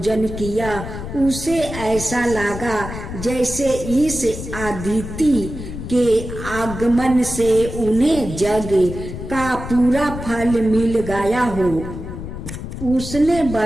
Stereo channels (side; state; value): left; noise; rumble, 9 dB below the sound